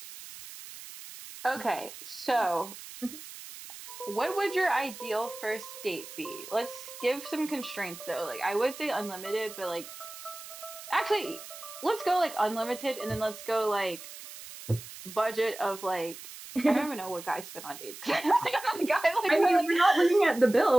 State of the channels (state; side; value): noise; right; hiss, 14 dB below the sound